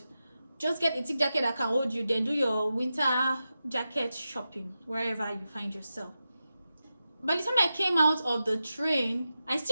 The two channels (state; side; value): inverted; both; correlation -0.91